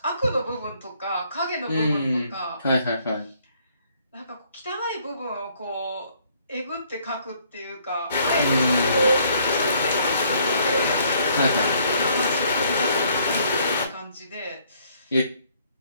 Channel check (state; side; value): inverted; both; correlation -0.65